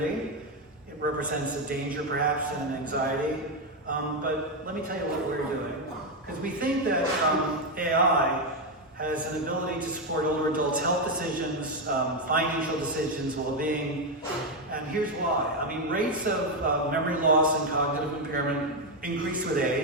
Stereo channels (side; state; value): both; normal; correlation 0.06